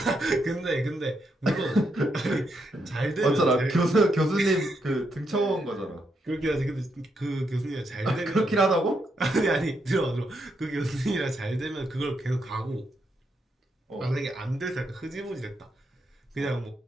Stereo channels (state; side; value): normal; both; correlation 0.80